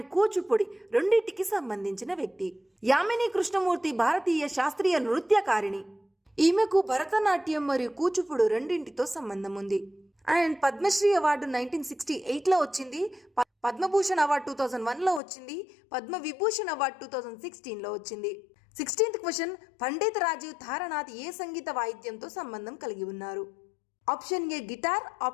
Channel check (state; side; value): drops out; right; at 15.2 s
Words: Kuchipudi రెండింటికి సంబంధించిన వ్యక్తి. యామిని కృష్ణమూర్తి భారతీయ శాస్త్రీయ నృత్యకారిణి. ఈమెకు భరతనాట్యం మరియు కూచిపూడి రెండింటితో సంబంధం ఉంది. అండ్ పద్మశ్రీ అవార్డు 1968లో వచ్చింది. పద్మభూషణ్ అవార్డు 2001లో వచ్చింది. పద్మవిభూషణ్ అవార్డు 2016లో వచ్చింది. 16th క్వశ్చన్ పండిత్ రాజీవ్ తారానాథ్ ఏ సంగీత వాయిద్యంతో సంబంధం కలిగి ఉన్నారు? Option A guitar,